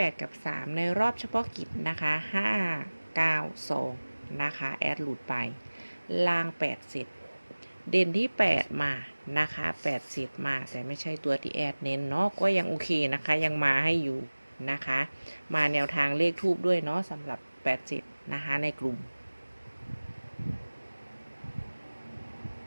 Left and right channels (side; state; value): both; inverted; correlation -1.00